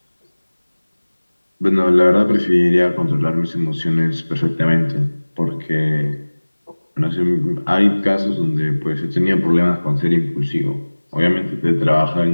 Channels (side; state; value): both; inverted; correlation -1.00